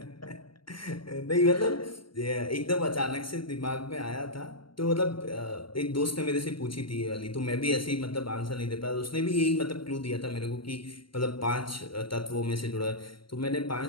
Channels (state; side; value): late; right; 0.73 ms